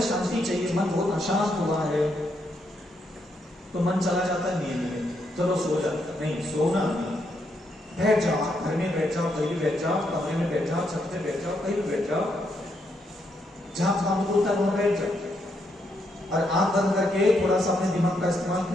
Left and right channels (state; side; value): normal; both; correlation 0.78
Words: शांति चाहिए, मन बहुत अशांत हुआ है, तो मन चला जाता है नींद में, चलो सो जाता। नहीं, सोना नहीं। बैठ जाओ, घर में बैठ जाओ, कहीं भी बैठ जाओ, कमरे में बैठ जाओ, छत पे बैठ जाओ, कहीं भी बैठ जाओ, जहां काम होता है वहां बैठ जाओ और आंख बंद करके थोड़ा सा अपने दिमाग का इस्तेमाल